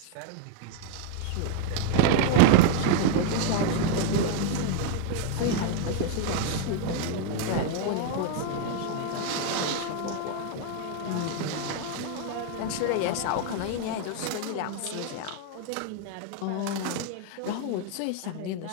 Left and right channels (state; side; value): different; both; correlation 0.00